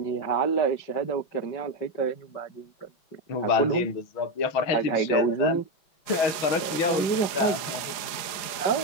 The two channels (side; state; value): right; late; 5.0 ms